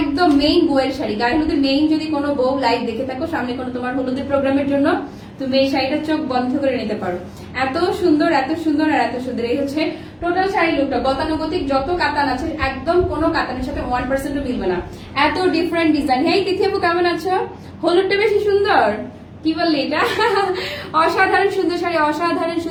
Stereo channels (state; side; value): identical; both; correlation 1.00